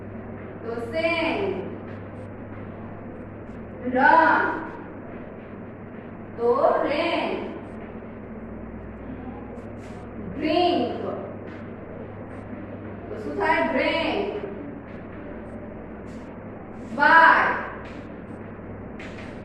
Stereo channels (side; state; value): both; identical; correlation 1.00